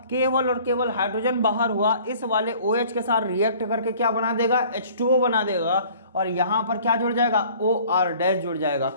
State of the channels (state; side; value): inverted; both; correlation -0.51